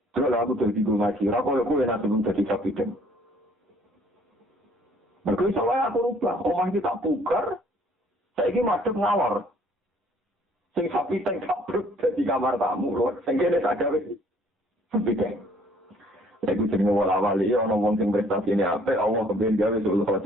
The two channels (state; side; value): normal; both; correlation 0.60